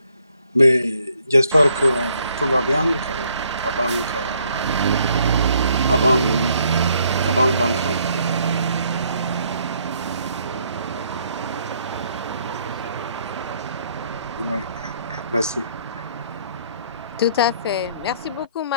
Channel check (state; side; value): inverted; both; correlation -0.67